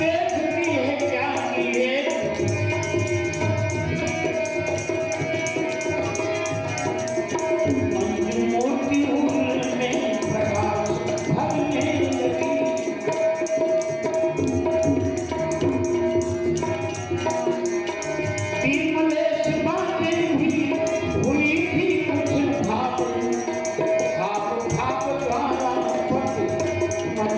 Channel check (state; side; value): identical; both; correlation 1.00